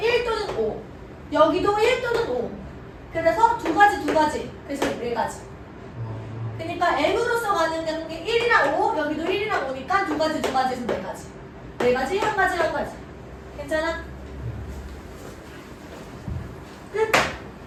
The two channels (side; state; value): both; identical; correlation 1.00